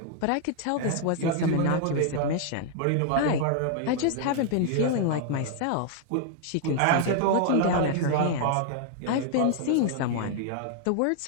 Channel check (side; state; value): both; different; correlation 0.00